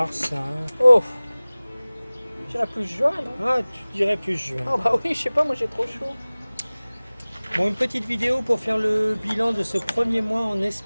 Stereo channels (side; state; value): both; inverted; correlation -0.99